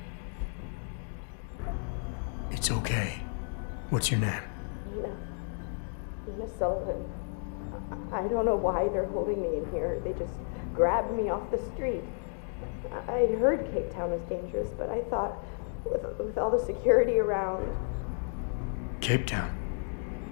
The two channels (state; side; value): silent; right; 56 dB below the other